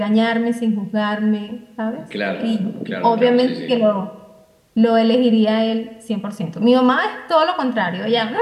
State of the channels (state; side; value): identical; both; correlation 1.00